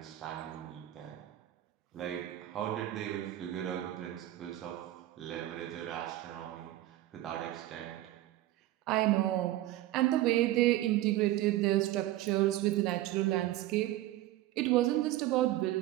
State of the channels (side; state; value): left; quieter; 15.2 dB